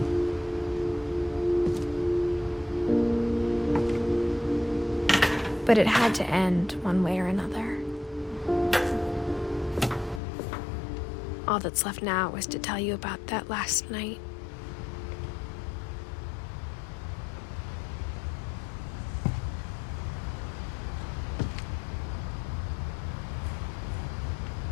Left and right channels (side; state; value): right; drops out; at 10.2 s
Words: But it had to end one way or another. All that's left now is to tell you about that last night.